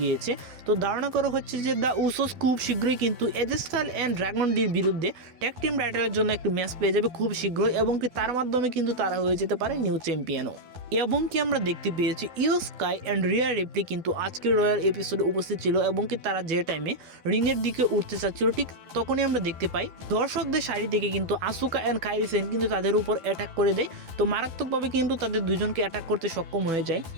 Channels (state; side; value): late; left; 12 ms